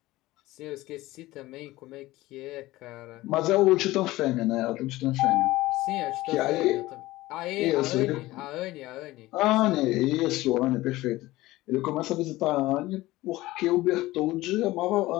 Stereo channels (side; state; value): right; quieter; 18.1 dB